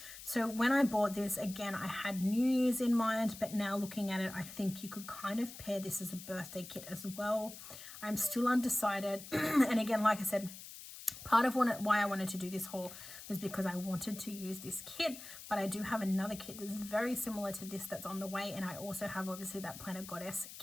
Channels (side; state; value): left; noise; hiss, 13 dB below the sound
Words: So when I bought this, again, I had New Year's in mind, but now looking at it, I think you could kind of pair this as a birthday kit as well. I'm still undecided. And again, like I said, part of why I wanted to do this haul was because I wanted to use this kit, but I do have another kit that's very similar to this that's on the way, and I also have obviously that Planner Goddess